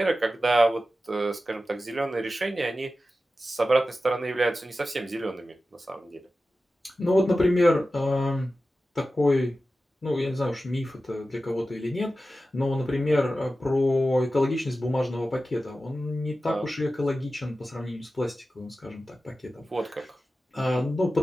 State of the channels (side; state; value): both; normal; correlation 0.93